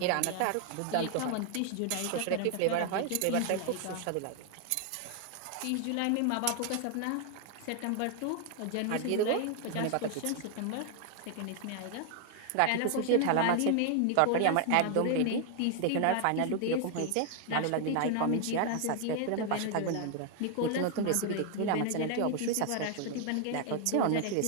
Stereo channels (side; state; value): both; different; correlation 0.00